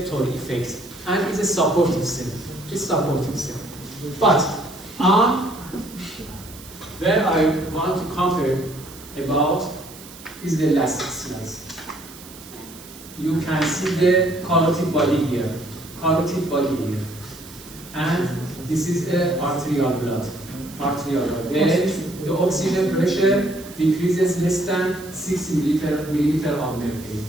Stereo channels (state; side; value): noise; right; hiss, 18 dB below the sound